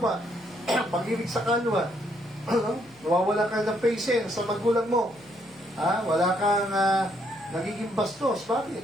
pag-ibig sa kanwa. Nawawala ka ng patience sa magulang mo. Wala kang nagiging bastos.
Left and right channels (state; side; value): noise; left; hum, 29 dB below the sound